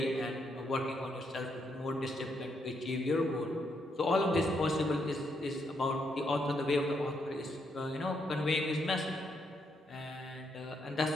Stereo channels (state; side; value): normal; both; correlation 0.77